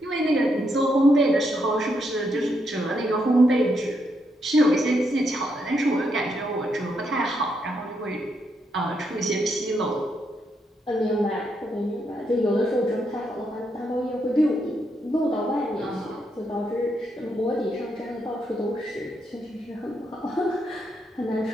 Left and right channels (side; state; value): both; normal; correlation 0.79